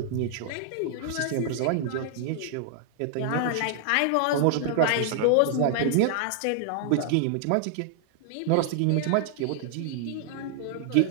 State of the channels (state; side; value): different; both; correlation -0.01